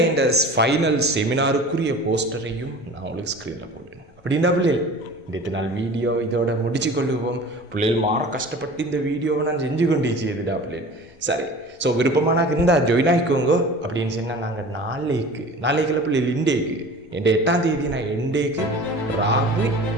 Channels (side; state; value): both; normal; correlation 0.40